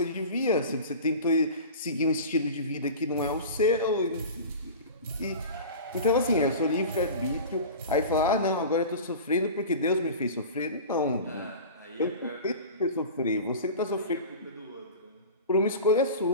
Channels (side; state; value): both; inverted; correlation -0.34